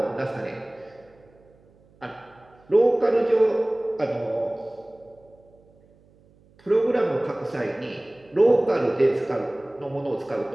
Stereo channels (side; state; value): right; noise; hum, 30 dB below the sound